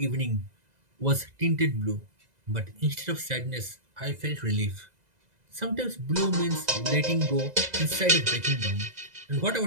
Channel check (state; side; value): late; left; 2.0 ms